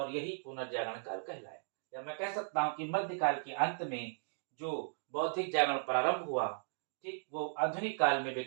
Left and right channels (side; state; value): left; silent; digital silence